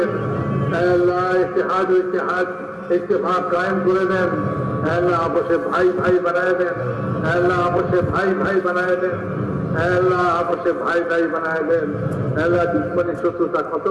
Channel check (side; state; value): both; identical; correlation 1.00